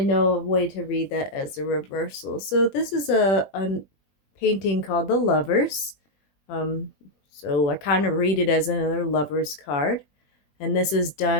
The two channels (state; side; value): late; right; 20 ms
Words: know a way to read that as a reversal. So this is a painting called The Lovers. So I kind of read it as another Lovers card. And this is